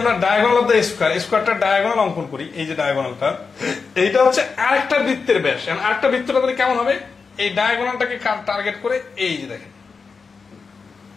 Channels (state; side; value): quieter; right; 5.0 dB